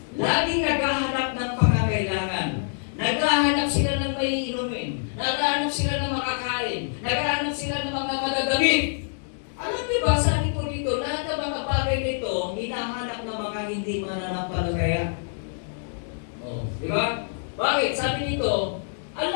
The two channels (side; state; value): right; silent; digital silence